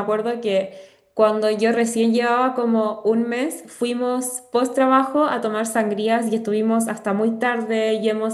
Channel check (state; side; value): identical; both; correlation 1.00